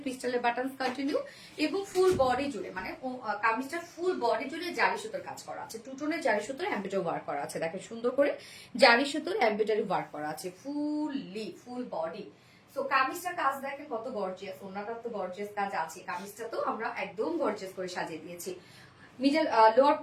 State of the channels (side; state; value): both; identical; correlation 1.00